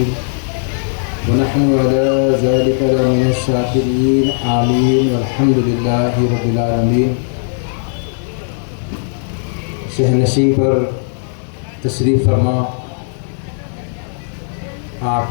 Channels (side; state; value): right; silent; digital silence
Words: ونحن على ذلك لمن الشاكرين آمين والحمد لله رب العالمين. شہنشین پر تشریف فرما آپ